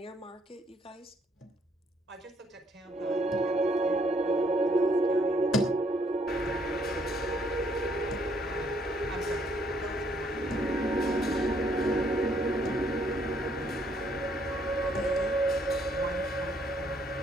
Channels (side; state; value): both; normal; correlation 0.68